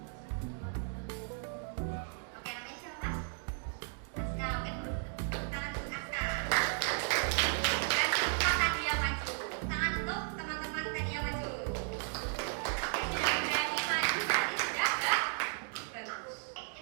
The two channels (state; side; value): silent; left; 54 dB below the other